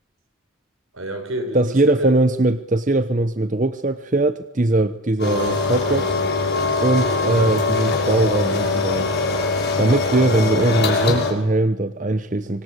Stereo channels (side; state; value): both; normal; correlation 0.36